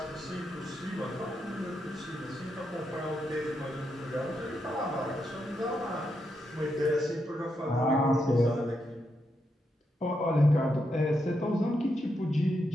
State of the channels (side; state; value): both; normal; correlation 0.82